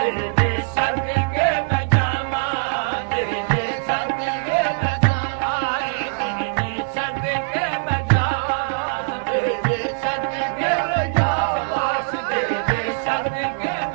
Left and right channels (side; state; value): left; silent; digital silence